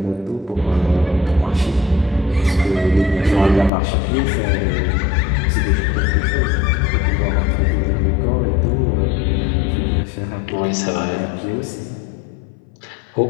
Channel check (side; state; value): right; drops out; at 3.7 s